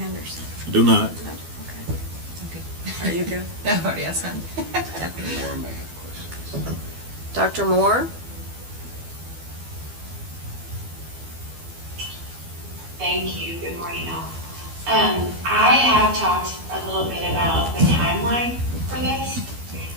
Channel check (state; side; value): late; left; 12 ms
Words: Do not. No, okay. Are you good? No, I've already asked him. Dr. Moore may have questions. Dr. Moore? Thank you. Good morning, all. I have talked a little bit about the timeline for this.